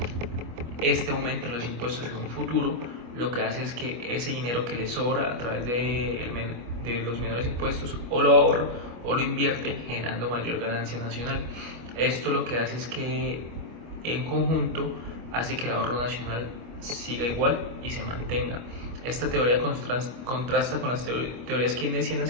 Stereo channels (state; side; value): late; left; 25 ms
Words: este aumento en los impuestos en un futuro, lo que hace es que ese dinero que le sobra a través de los menores impuestos o lo ahorra o lo invierte, generando mayor ganancia nacional. Esto lo que hace es que en conjunto hace que el ahorro nacional siga igual y se mantenga. Esta teoría contrasta con las teorías